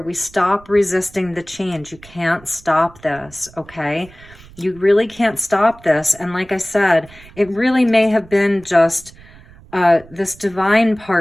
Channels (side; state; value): right; noise; rumble, 23 dB below the sound